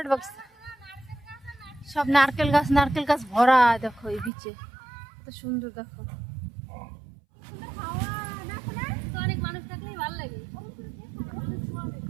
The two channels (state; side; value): drops out; left; at 4.3 s